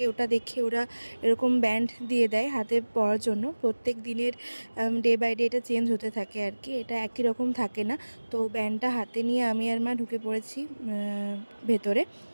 ওটা দেখে ওরা এরকম ব্যান্ড দিয়ে দেয় হাতে পরার জন্য। প্রত্যেক দিনের ডে বাই ডে এটা চেঞ্জ হতে থাকে আর কি, এটা একই রকম থাকে না। তো ব্যান্ডটা হাতে নিয়ে আমি আর মা ঢুকে পড়েছি ভেতরে।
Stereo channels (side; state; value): both; inverted; correlation -1.00